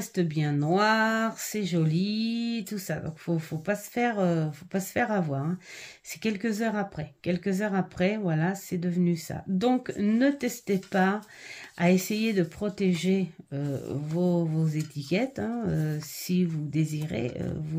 bien noir, c'est joli, tout ça. Donc faut pas se faire avoir, hein. C'est quelques heures après, voilà, c'est devenu ça. Donc ne testez pas à essayer de protéger vos étiquettes, hein, si vous désirez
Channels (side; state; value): both; identical; correlation 1.00